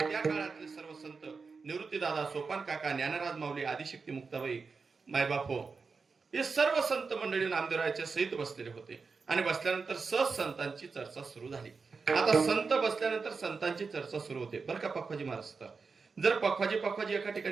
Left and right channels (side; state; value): left; quieter; 4.8 dB